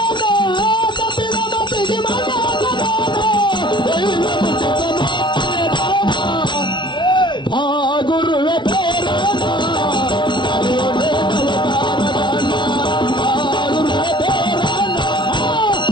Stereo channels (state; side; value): late; right; 0.23 ms